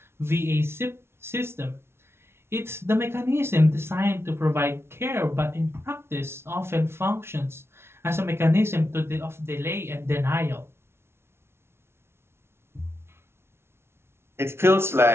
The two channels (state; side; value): late; left; 0.12 ms